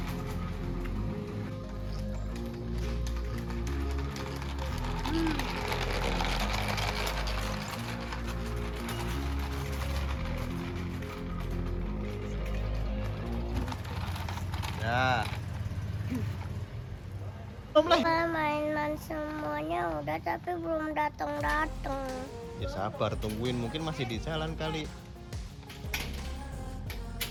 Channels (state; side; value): identical; both; correlation 1.00